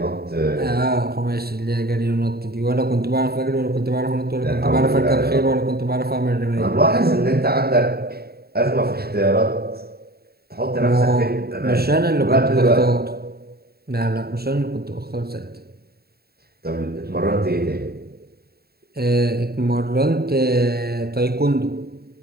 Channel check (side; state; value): left; late; 0.45 ms